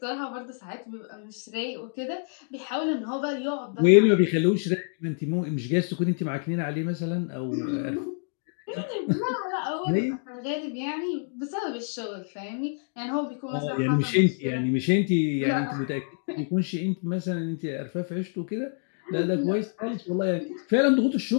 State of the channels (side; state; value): right; silent; 57 dB below the other